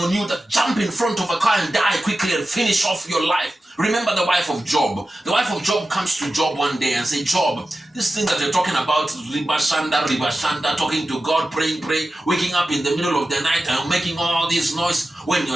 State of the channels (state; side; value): normal; both; correlation 0.93